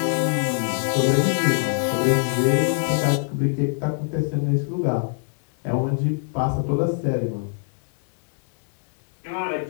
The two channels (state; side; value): silent; right; digital silence